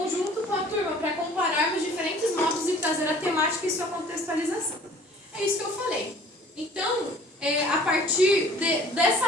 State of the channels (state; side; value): normal; both; correlation 0.51